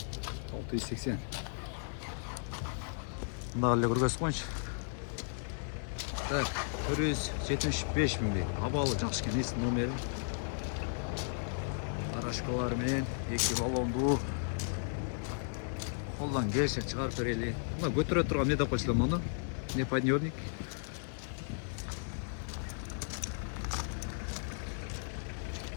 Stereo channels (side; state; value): right; silent; 54 dB below the other